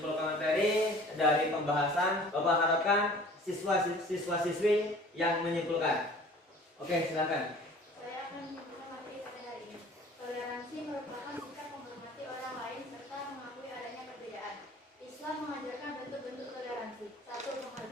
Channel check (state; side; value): normal; both; correlation 0.48